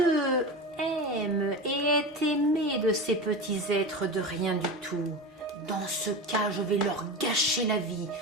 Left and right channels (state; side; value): normal; both; correlation 0.25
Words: aime et est aimé de ces petits êtres de rien du tout. Dans ce cas, je vais leur gâcher la vie